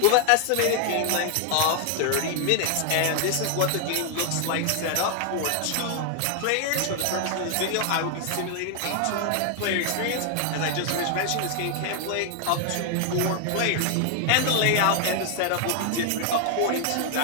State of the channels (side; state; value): both; different; correlation 0.00